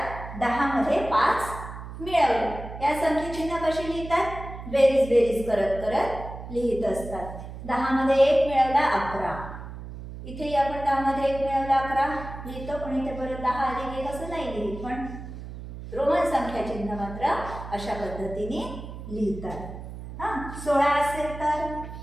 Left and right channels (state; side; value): noise; right; hum, 11 dB below the sound